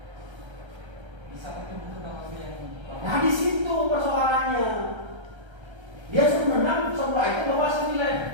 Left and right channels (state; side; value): late; left; 1.3 ms